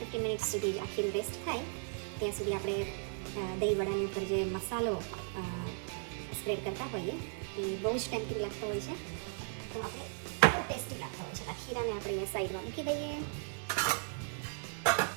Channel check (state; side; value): silent; left; 54 dB below the other